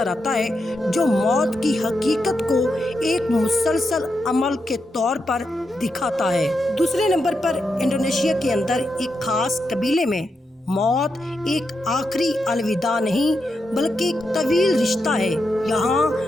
آتا ہے، جو موت کی حقیقت کو ایک مسلسل عمل کے طور پر دکھاتا ہے۔ دوسرے نمبر پر انڈونیشیا کے اندر ایک خاص قبیلے میں موت ایک آخری الوداع نہیں بلکہ ایک طویل رشتہ ہے۔ یہاں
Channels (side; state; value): both; normal; correlation 0.85